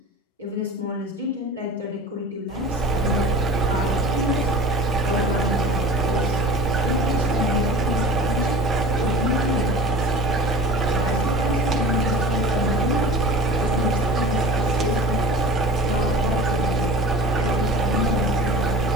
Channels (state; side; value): normal; both; correlation 0.40